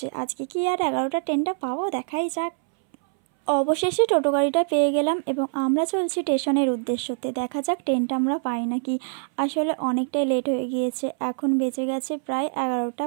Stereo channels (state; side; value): silent; left; 62 dB below the other